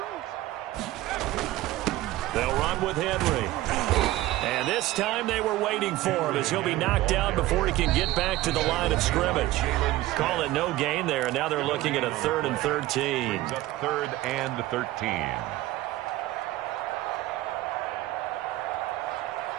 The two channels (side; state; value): left; quieter; 16.6 dB